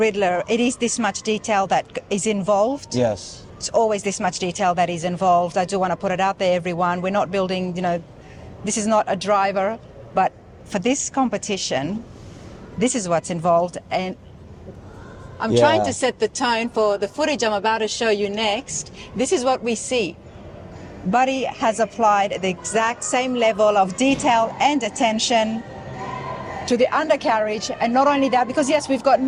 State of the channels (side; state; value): both; identical; correlation 1.00